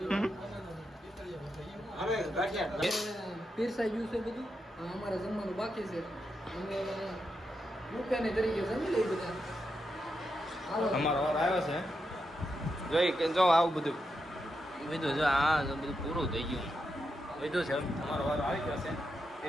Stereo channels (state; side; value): normal; both; correlation 0.85